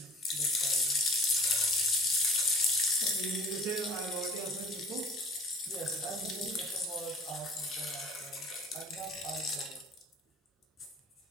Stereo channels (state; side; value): normal; both; correlation 0.47